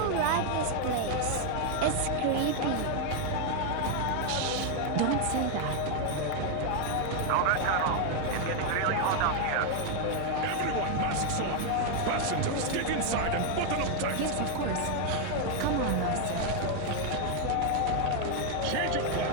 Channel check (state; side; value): different; both; correlation 0.00